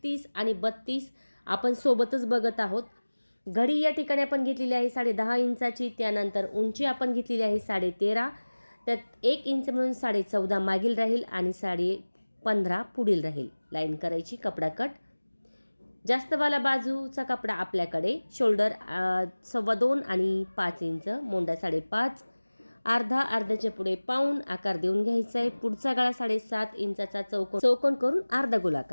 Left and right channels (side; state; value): both; inverted; correlation -1.00